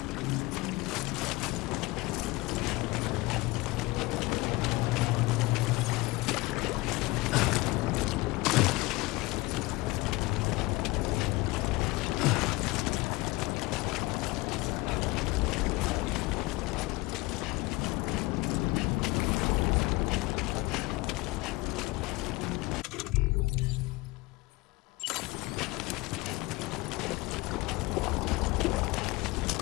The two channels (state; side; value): quieter; right; 22.0 dB